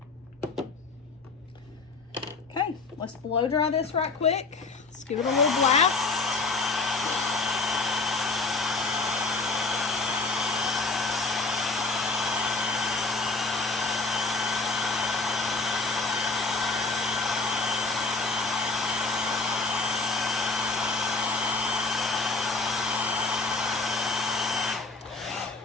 Let's blow dry this right quick. Let's give it a little blast.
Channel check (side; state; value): right; quieter; 3.8 dB